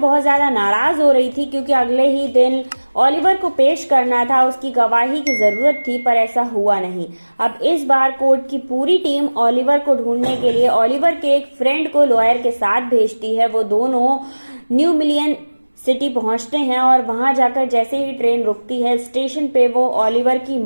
ज्यादा नाराज हो रही थी क्योंकि अगले ही दिन ओलिवर को पेश करना था, उसकी गवाही की जरूरत थी, पर ऐसा हुआ नहीं। अब इस बार कोर्ट की पूरी टीम ओलिवर को ढूंढने के लिए ओलिवर के एक फ्रेंड को लॉयर के साथ भेजती है। वो दोनों न्यू मिलियन सिटी पहुंचते हैं और वहां जाकर जैसे ही ट्रेन रुकती है, स्टेशन पे वो ओलिवर की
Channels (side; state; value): both; inverted; correlation -1.00